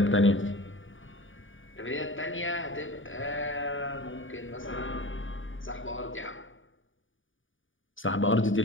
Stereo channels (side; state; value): right; late; 0.57 ms